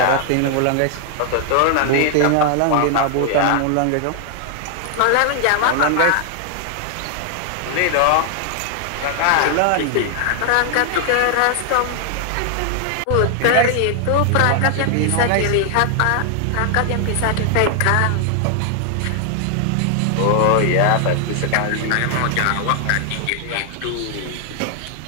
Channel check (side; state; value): both; different; correlation 0.00